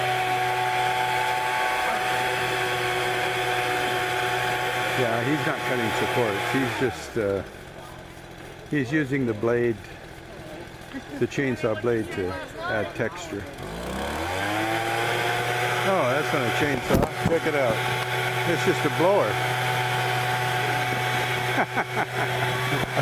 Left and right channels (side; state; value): both; identical; correlation 1.00